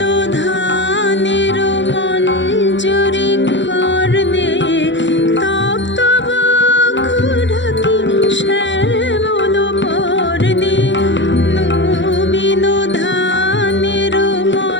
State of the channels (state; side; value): late; right; 0.54 ms